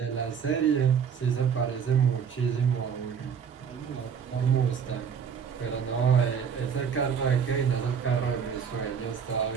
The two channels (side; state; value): left; quieter; 7.1 dB